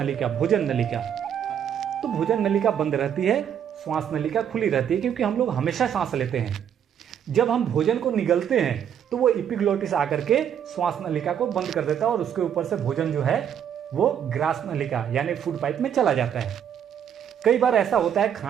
भोजन नलिका। तो भोजन नलिका बंद रहती है, श्वास नलिका खुली रहती है, क्योंकि हम लोग हमेशा सांस लेते हैं। जब हम भोजन को निगलते हैं तो वो एपिग्लॉटिस आकर के श्वास नलिका को बंद कर देता है और उसके ऊपर से भोजन जो है वो ग्रास नलिका यानी फूड पाइप में चला जाता है। कई बार ऐसा होता है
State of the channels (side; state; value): left; quieter; 8.9 dB